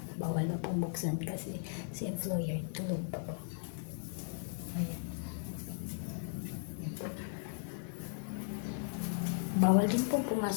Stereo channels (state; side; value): silent; right; digital silence